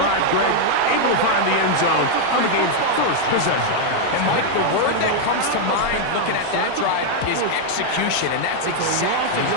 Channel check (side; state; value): both; different; correlation 0.00